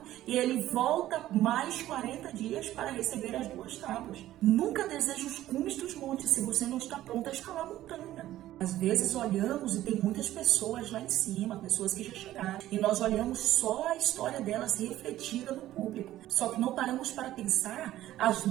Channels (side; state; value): left; quieter; 14.1 dB